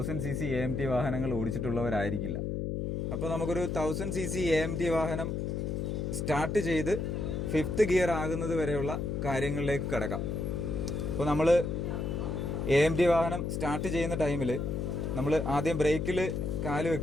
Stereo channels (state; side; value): noise; left; hum, 2 dB below the sound